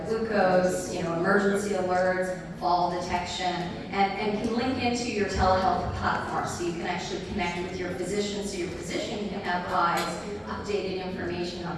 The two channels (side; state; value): both; identical; correlation 1.00